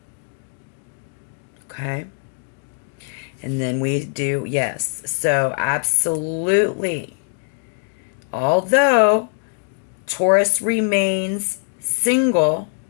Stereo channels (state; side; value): silent; right; 58 dB below the other